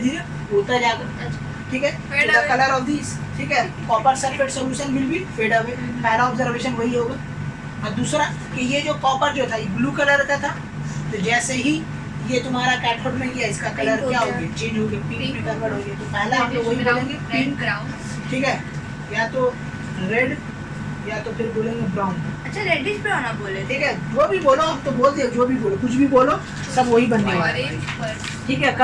उड़ता जाएगा, ठीक है। द कलर ऑफ दिस, ठीक है, copper sulphate solution will be fed away. पहला ऑब्जर्वेशन वही होगा। और दूसरा कि ये जो कॉपर जो था ये ब्लू कलर का था, तो जैसे ही ये तुम्हारा कैथोड में गया इसका कलर क्या हो गया, चेंज हो गया, पिंक में कन्वर्ट हो गया। तो पहला हम लोग वही बोलेंगे पिंक, ठीक है, या तो रेड या तो फिर बोलेंगे ब्राउन। अच्छा रेडिश ब्राउन आप बोले थे। ठीक है, जो भी बोलो हम तो बोल दिए, जो भी बोलो, कुछ भी बोलो सब वही बनने वाला है। ठीक है,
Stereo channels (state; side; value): identical; both; correlation 1.00